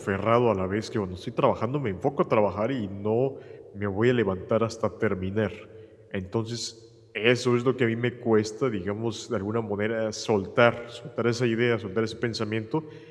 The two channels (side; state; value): both; identical; correlation 1.00